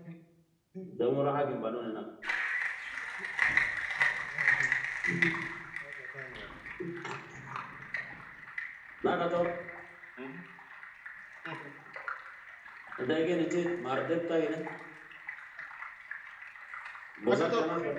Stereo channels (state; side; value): identical; both; correlation 1.00